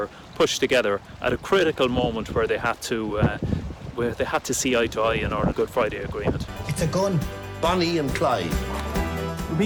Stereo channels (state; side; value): identical; both; correlation 1.00